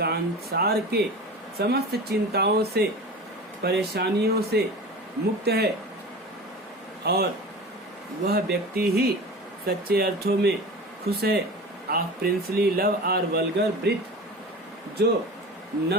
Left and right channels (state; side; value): normal; both; correlation 0.34